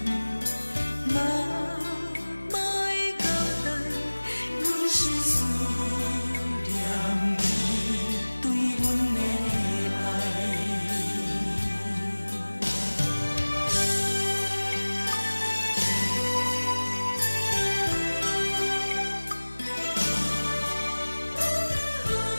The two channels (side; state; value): both; inverted; correlation -1.00